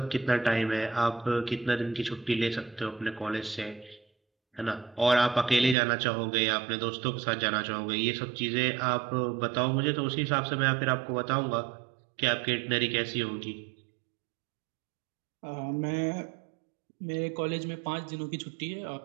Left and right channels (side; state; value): left; drops out; at 5.8 s